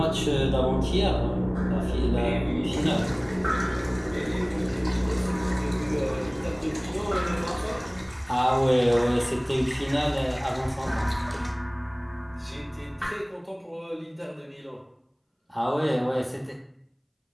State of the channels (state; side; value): identical; both; correlation 1.00